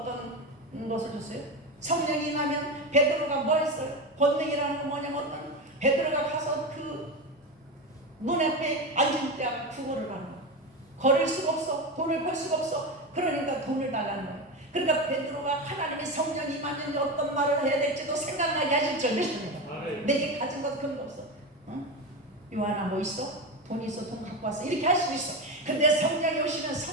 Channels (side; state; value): both; normal; correlation 0.19